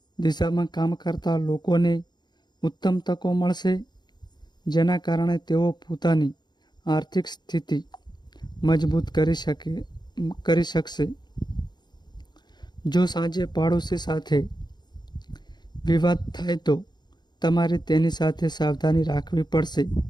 દિશામાં કામ કરતા લોકોને ઉત્તમ તકો મળશે, જેના કારણે તેઓ પોતાની આર્થિક સ્થિતિ મજબૂત કરી શકશે. જો સાંજે પાડોશી સાથે વિવાદ થાય તો તમારે તેની સાથે સાવધાની રાખવી પડશે.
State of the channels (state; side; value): late; right; 0.21 ms